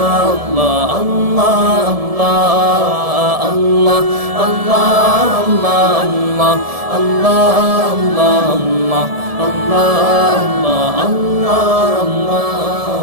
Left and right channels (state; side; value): late; left; 1.7 ms